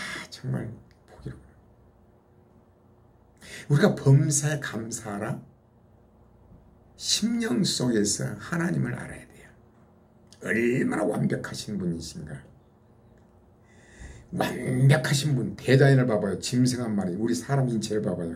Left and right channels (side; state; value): both; identical; correlation 1.00